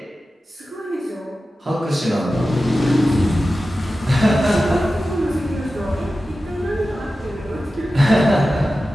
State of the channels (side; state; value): both; normal; correlation 0.94